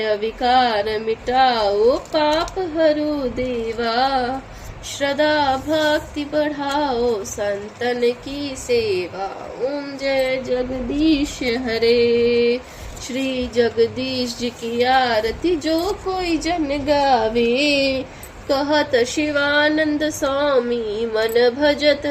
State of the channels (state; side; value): identical; both; correlation 1.00